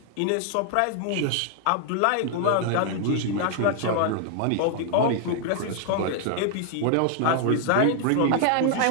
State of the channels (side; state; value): both; different; correlation 0.00